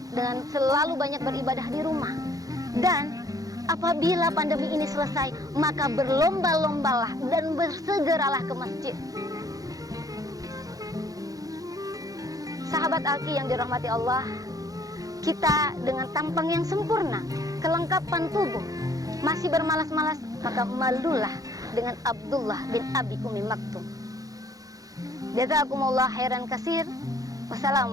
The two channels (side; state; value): left; late; 0.17 ms